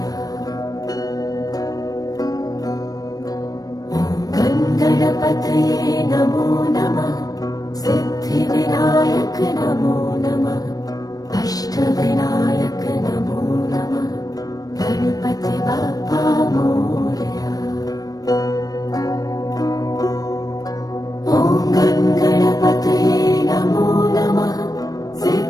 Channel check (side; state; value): right; late; 0.18 ms